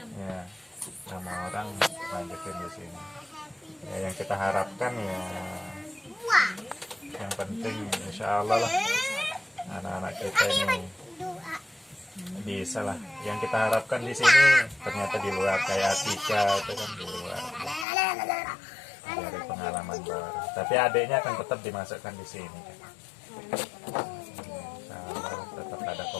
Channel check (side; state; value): right; drops out; at 17.9 s